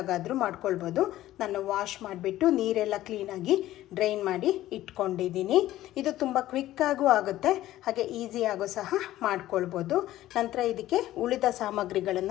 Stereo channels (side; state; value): right; quieter; 14.6 dB